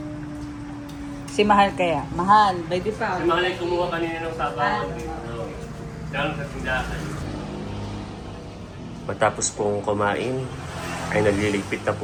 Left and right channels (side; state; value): both; identical; correlation 1.00